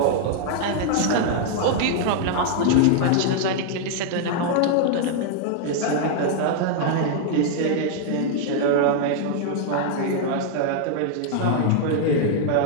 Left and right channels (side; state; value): both; different; correlation -0.01